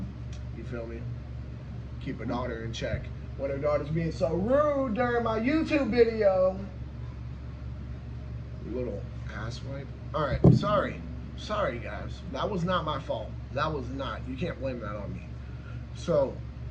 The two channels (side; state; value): both; identical; correlation 1.00